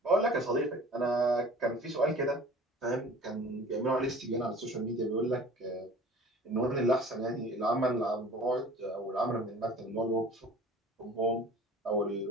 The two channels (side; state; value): both; normal; correlation 0.45